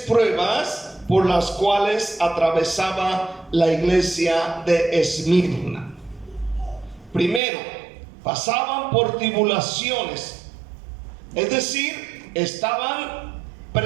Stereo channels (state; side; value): drops out; left; at 7.4 s